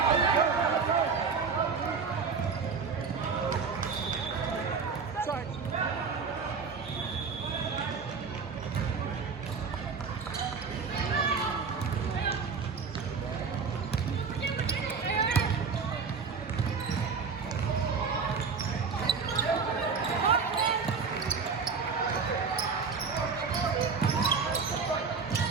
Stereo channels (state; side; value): quieter; left; 5.4 dB